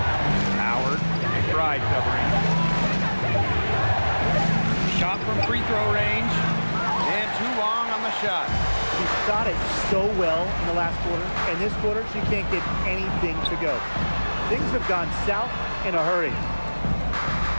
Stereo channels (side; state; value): both; inverted; correlation -1.00